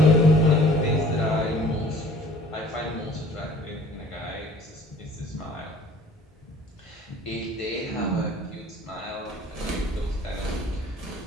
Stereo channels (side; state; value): both; normal; correlation 0.50